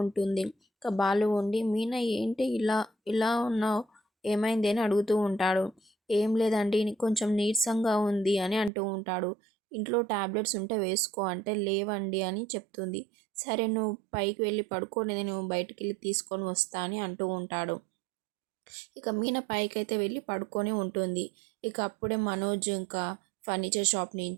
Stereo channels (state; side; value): drops out; left; at 8.7 s